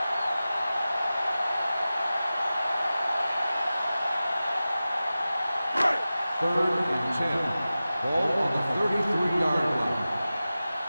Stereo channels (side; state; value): both; inverted; correlation -0.95